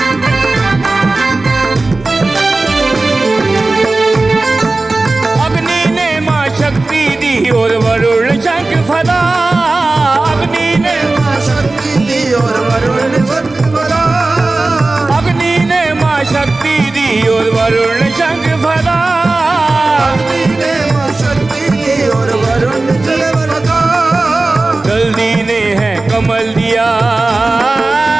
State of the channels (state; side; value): quieter; left; 3.2 dB